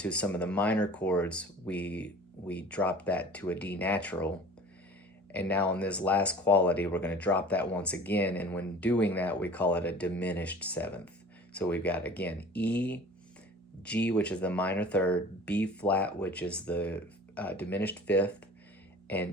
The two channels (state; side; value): normal; both; correlation 0.43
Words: some of the minor chords, we dropped that to a D natural. And now in this last quality, we're going to drop that once again, and when doing that, we call it a diminished 7th. So we've got, again, E, G, which is the minor third, B flat, which is the diminished 5th,